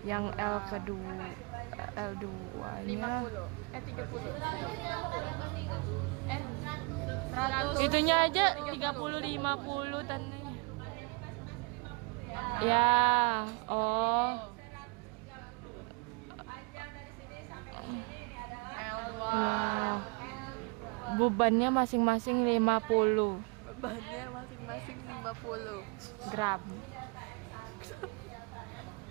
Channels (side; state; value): left; quieter; 31.1 dB